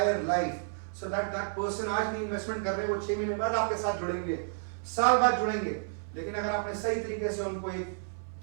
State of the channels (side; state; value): left; silent; 57 dB below the other